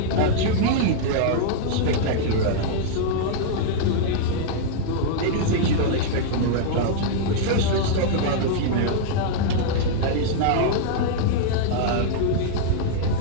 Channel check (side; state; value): both; different; correlation -0.01